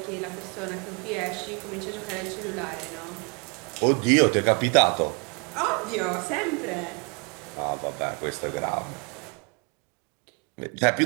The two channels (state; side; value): quieter; left; 34.5 dB